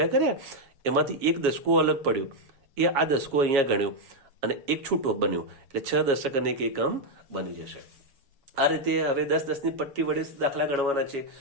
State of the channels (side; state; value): left; late; 7.2 ms